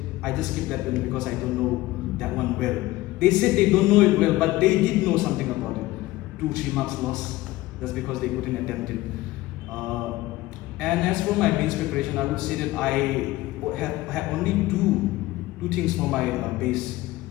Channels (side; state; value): right; quieter; 17.9 dB